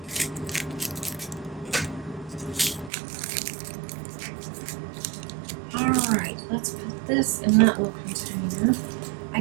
Alright, let's put this in that little container. I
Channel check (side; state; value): left; drops out; at 2.9 s